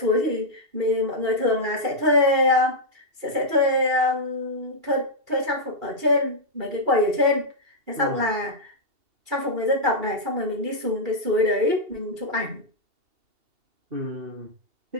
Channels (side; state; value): left; late; 2.7 ms